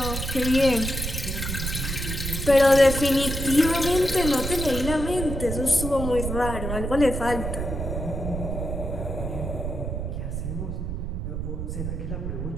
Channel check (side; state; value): right; noise; rumble, 4 dB below the sound